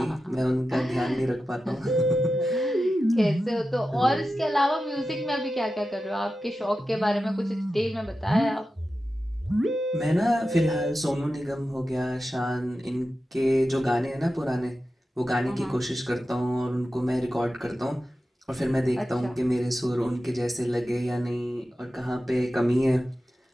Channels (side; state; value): both; normal; correlation 0.92